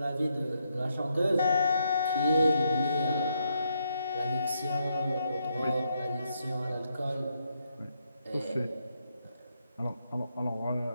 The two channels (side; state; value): both; inverted; correlation -0.78